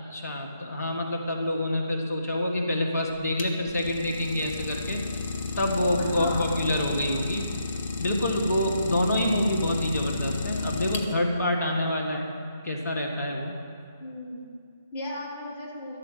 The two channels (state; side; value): inverted; both; correlation -0.77